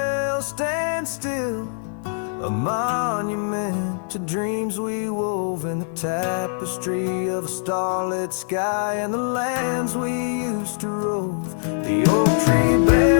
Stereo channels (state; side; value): silent; right; 57 dB below the other